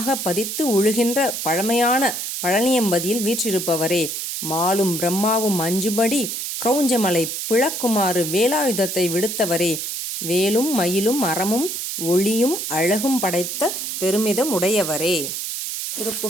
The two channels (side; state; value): right; noise; hiss, 4 dB below the sound